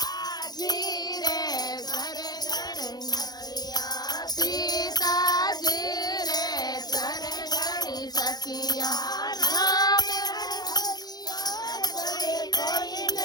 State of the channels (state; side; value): late; right; 0.19 ms